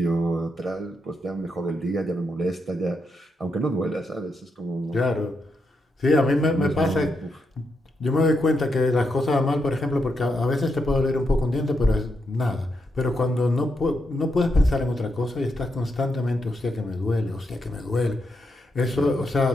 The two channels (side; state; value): both; normal; correlation 0.82